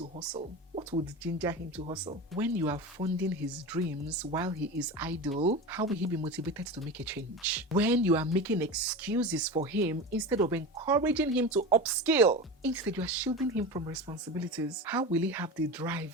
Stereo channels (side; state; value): both; normal; correlation 0.27